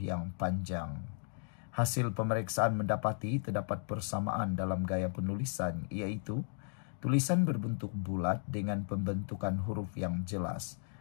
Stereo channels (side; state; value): right; silent; 54 dB below the other